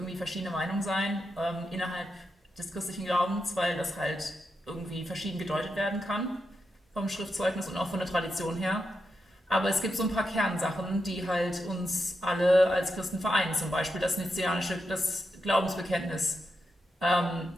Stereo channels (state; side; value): normal; both; correlation 0.86